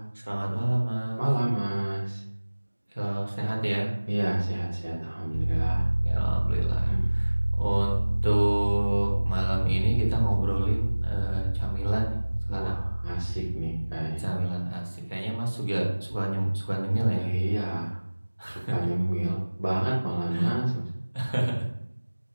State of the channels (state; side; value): inverted; both; correlation -1.00